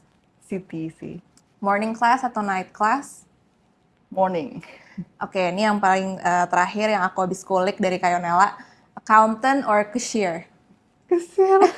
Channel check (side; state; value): both; identical; correlation 1.00